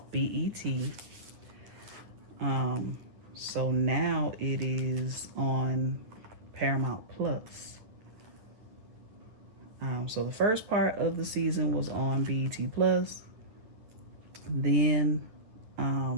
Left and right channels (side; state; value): left; late; 9.6 ms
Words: BET. So now it is on Paramount Plus. So the first part of the season was on BET Plus. Then